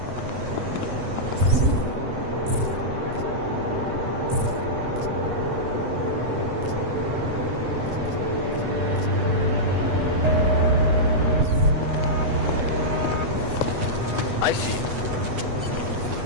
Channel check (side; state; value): left; late; 8.2 ms